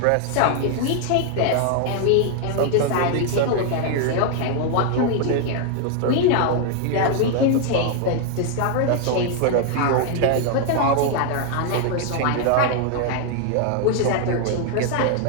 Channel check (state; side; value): different; both; correlation 0.00